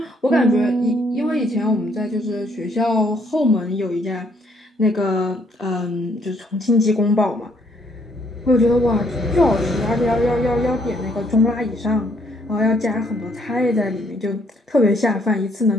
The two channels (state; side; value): normal; both; correlation 0.68